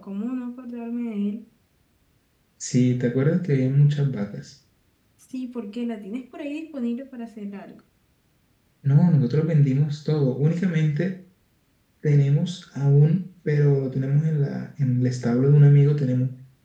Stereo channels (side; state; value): both; identical; correlation 1.00